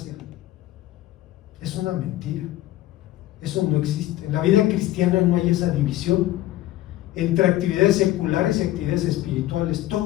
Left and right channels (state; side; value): quieter; right; 15.1 dB